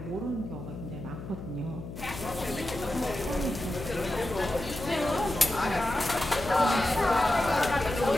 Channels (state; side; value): noise; left; hum, 10 dB below the sound